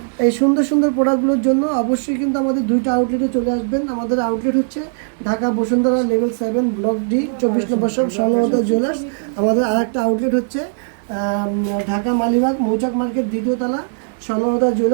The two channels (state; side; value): silent; left; digital silence